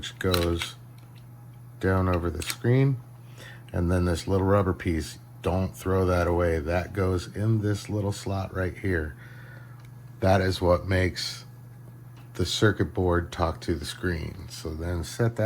goes down over the screen, and then this little rubber piece. Don't throw that away. That goes in this little slot right here. That is what makes the circuit board talk to the screen. So then set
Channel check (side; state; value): both; identical; correlation 1.00